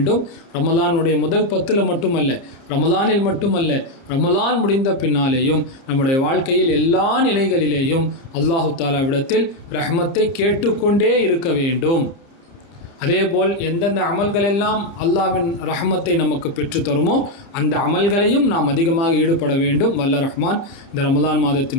ரமலானுடைய முதல் 10 மட்டுமல்ல, ரமலானில் மட்டுமல்ல, ரமலான் முடிந்த பின்னாலேயும் நம்முடைய வாழ்க்கையில் எல்லா நிலைகளிலேயும் அல்லாஹு தாலாவிடத்தில் ரஹ்மத்தை கேட்டுக்கொண்டே இருக்க வேண்டும். அதேபோல் எந்தெந்த அமல்களெல்லாம் அல்லாஹ்வின் ரஹ்மத்தை நமக்கு பெற்று தருமோ அந்த அமல்களையும் நாம் அதிகமாக ஈடுபட வேண்டும். வல்ல ரஹ்மான் இந்த ரமலான்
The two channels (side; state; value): right; late; 30 ms